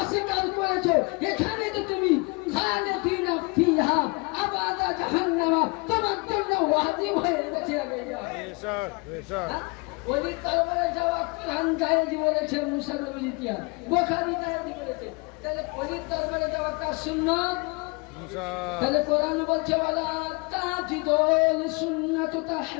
করেছো। এখানে তো তুমি খালিদিনা ফিহা আবাদা জাহান্নামা তোমার জন্য ওয়াজিব হয়ে গেছে। আগে যাও বেশক বেশক। ওলির দরবারে যাওয়া কোরআন জায়েজ বলেছে, মুসা নবীর ইতিহাস বুখারী জায়েজ বলেছে। তাহলে ওলির দরবারে যাওয়াটা সুন্নাত। মুসা তাহলে কোরআন বলছে ওয়ালা তাজিদুল সুন্নাতু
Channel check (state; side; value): quieter; right; 30.2 dB